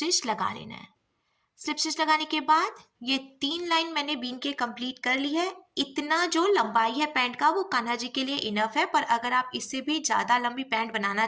लगा लेना है। स्लिप स्टिच लगाने के बाद ये 3 लाइन मैंने बीन के कंप्लीट कर ली है। इतना जो लंबाई है पैंट का वो कान्हा जी के लिए इनफ है, पर अगर आप इससे भी ज़्यादा लंबी पैंट बनाना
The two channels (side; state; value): both; identical; correlation 1.00